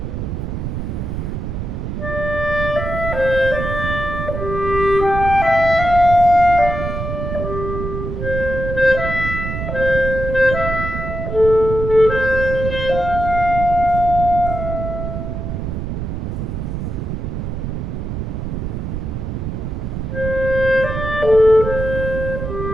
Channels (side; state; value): right; noise; rumble, 4 dB below the sound